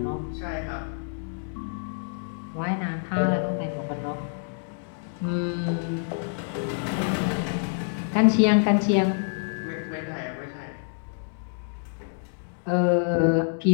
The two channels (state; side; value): silent; right; digital silence